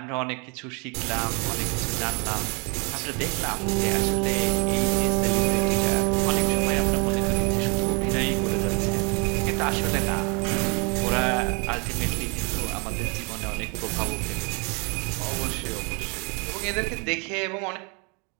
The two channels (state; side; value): quieter; left; 32.7 dB